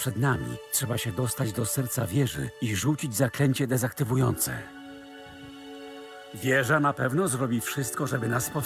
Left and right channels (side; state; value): both; identical; correlation 1.00